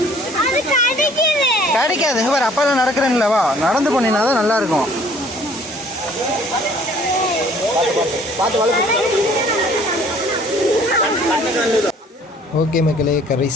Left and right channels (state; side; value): normal; both; correlation 0.56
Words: கிடைக்காது பாரு, அப்பா தான் நடக்கிறேன்ல, வா நடந்து போனீங்கன்னா தான் நல்லா இருக்கும். ஓகே மக்களே,